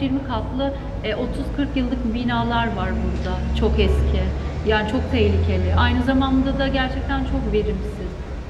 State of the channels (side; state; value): both; identical; correlation 1.00